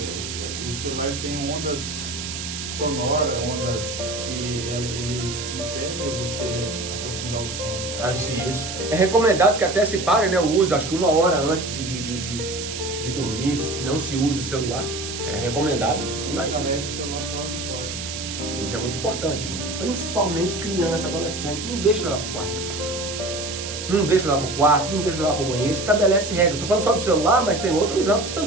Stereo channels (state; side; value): noise; right; hiss, 7 dB below the sound